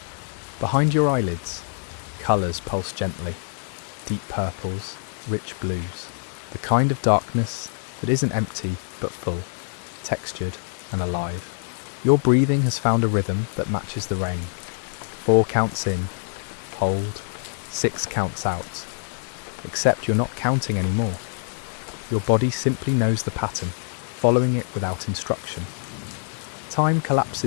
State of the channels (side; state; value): right; silent; 62 dB below the other